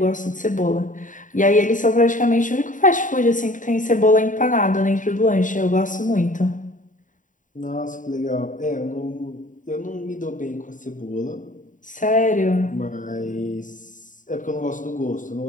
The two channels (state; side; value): late; right; 0.38 ms